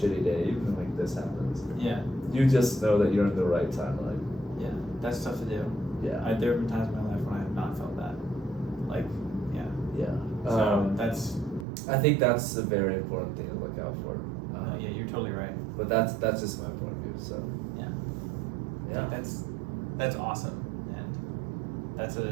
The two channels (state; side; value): drops out; left; at 11.7 s